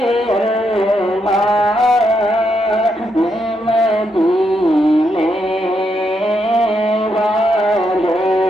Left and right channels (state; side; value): normal; both; correlation 0.79